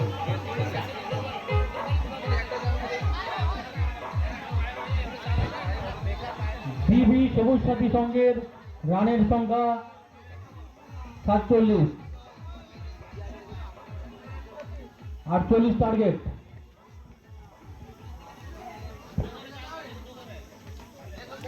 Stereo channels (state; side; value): identical; both; correlation 1.00